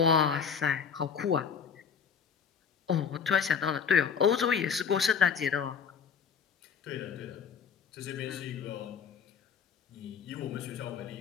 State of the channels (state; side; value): quieter; right; 6.8 dB